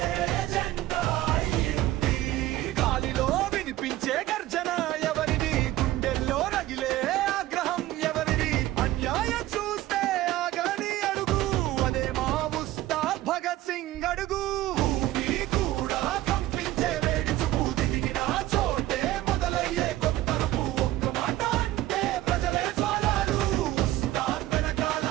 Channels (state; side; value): quieter; left; 15.6 dB